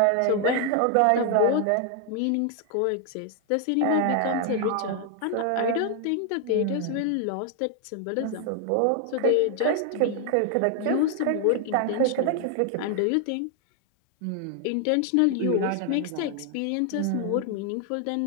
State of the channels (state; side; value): different; both; correlation 0.00